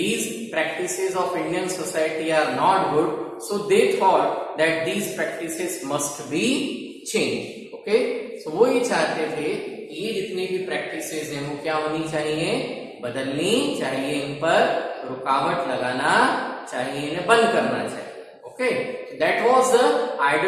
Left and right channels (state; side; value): identical; both; correlation 1.00